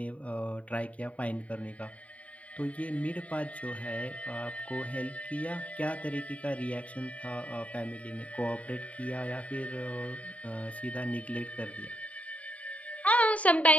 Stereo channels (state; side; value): late; right; 0.067 ms